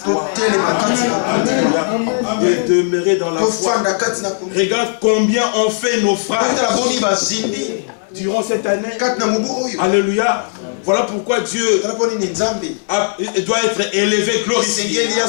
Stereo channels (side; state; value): right; silent; 62 dB below the other